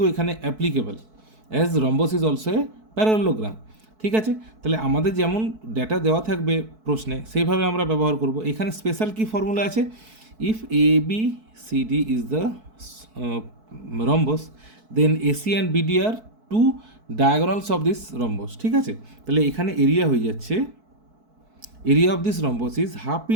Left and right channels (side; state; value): left; late; 4.6 ms